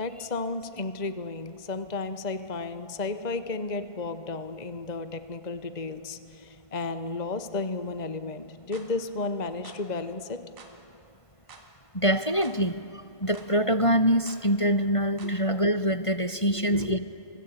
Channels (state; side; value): late; right; 1.5 ms